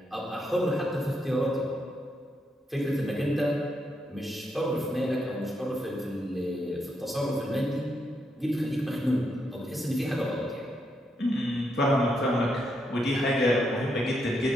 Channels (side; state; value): both; normal; correlation 0.80